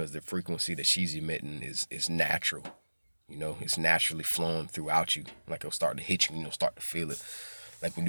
the frequency that she's emitting is natural. It's naturally flowing throughout you. Like it'll start to hit you, start to feel it. Like when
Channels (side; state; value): both; inverted; correlation -1.00